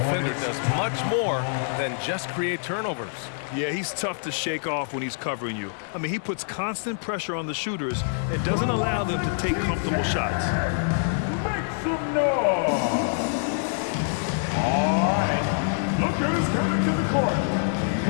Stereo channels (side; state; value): right; silent; 61 dB below the other